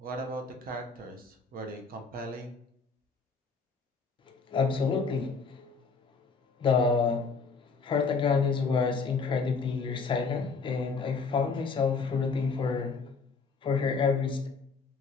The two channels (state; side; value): quieter; right; 4.7 dB